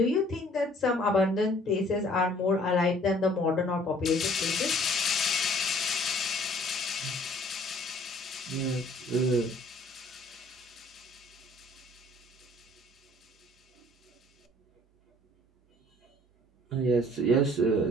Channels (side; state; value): both; normal; correlation 0.56